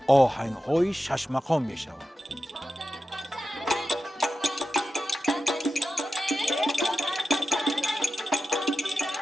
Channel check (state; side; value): normal; both; correlation 0.92